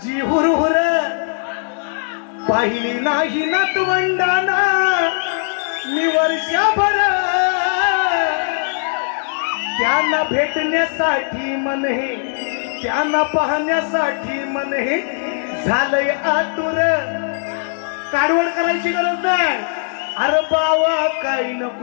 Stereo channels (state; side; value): silent; right; digital silence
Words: हुरहुर पाहिली नाही नातवंडाना मी वर्षभर. त्यांना भेटण्यासाठी मन हे, त्यांना पाहण्यासाठी मन हे झालंय आतुर. काढवड करायची गरज नाही. अरे बावा काही